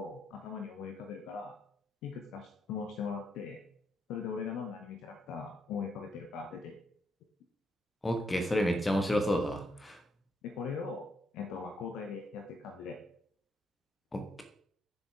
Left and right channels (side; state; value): both; normal; correlation 0.77